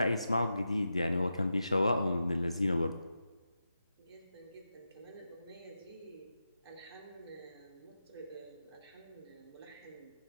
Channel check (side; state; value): both; inverted; correlation -0.89